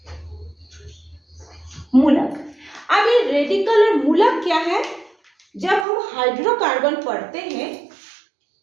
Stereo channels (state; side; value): drops out; left; at 5.9 s